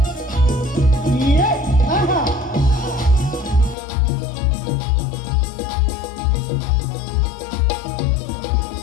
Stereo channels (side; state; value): right; drops out; at 3.8 s